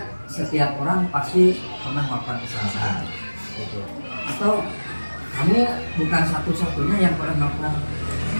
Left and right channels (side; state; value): both; inverted; correlation -1.00